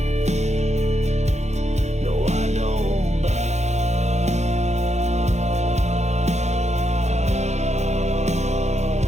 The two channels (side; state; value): left; late; 0.33 ms